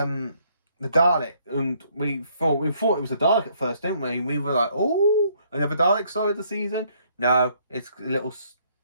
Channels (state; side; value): inverted; both; correlation -0.67